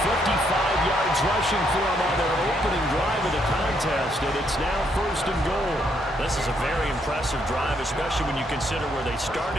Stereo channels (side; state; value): both; normal; correlation 0.73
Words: 55 yards rushing for him on their opening drive of the contest, and it's now 1st and goal. This is a very impressive drive, especially when you consider where they